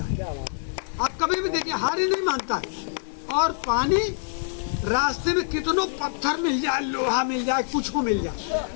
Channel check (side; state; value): right; silent; 59 dB below the other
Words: है। आप कभी भी देखिए हार ही नहीं मानता है। और पानी रास्ते में कितनों पत्थर मिल जाए, लोहा मिल जाए, कुछ को मिल जाए,